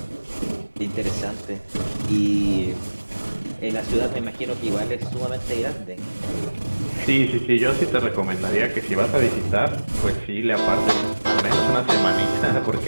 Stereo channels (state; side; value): inverted; both; correlation -1.00